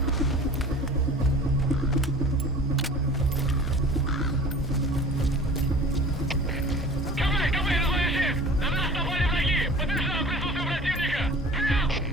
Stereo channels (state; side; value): normal; both; correlation 0.42